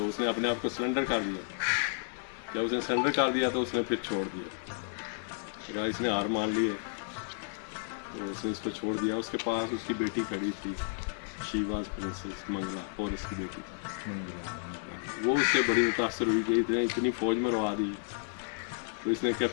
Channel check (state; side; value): silent; right; digital silence